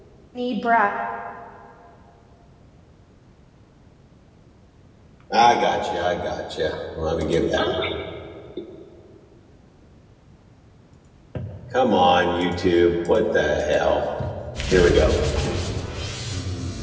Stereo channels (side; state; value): both; identical; correlation 1.00